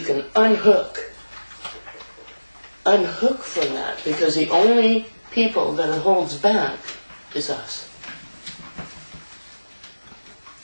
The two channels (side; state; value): both; inverted; correlation -1.00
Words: can unhook from that, because the only people that it holds back is us.